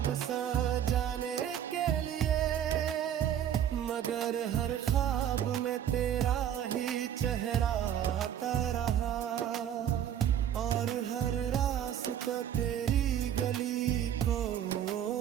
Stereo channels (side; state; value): left; quieter; 10.0 dB